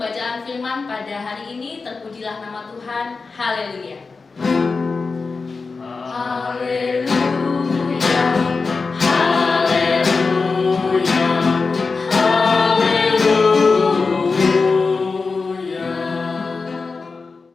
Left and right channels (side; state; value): right; quieter; 4.3 dB